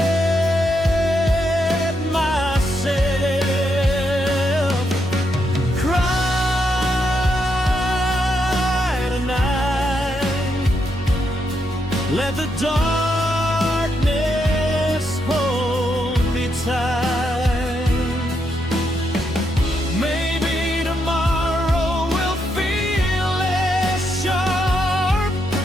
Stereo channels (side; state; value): both; normal; correlation 0.80